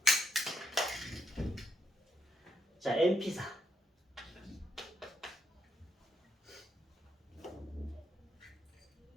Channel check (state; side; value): normal; both; correlation 0.79